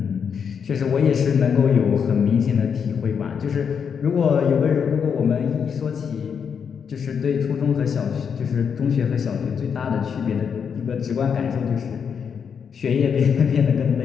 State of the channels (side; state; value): right; quieter; 6.9 dB